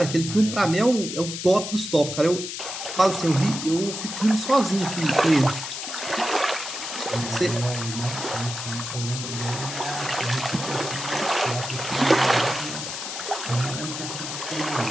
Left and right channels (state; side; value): noise; left; hiss, 6 dB below the sound